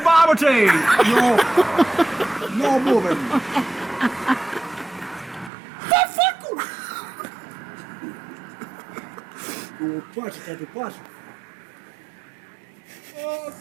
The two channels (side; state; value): left; drops out; at 5.5 s